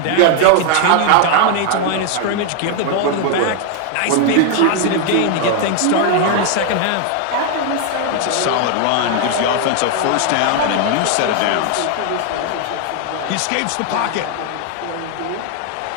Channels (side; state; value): both; different; correlation 0.00